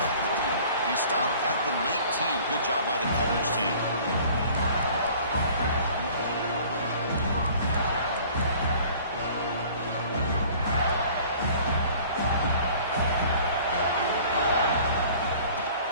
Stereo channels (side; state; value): both; inverted; correlation -0.50